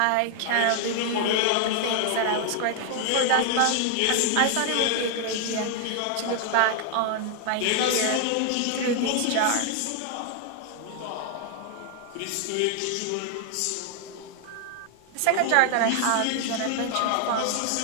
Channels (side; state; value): both; different; correlation 0.00